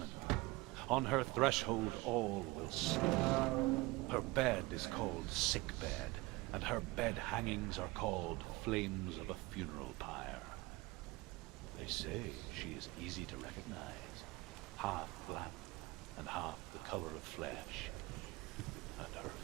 On her threshold all will sleep. Her bed is called sick bed, and her bed hangings are called flames of a funeral pyre. They say she is easy to recognize, half black and half the color of flesh, and her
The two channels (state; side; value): quieter; left; 21.9 dB